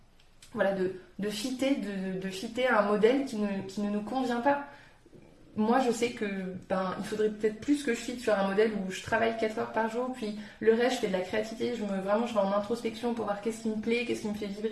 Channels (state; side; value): identical; both; correlation 1.00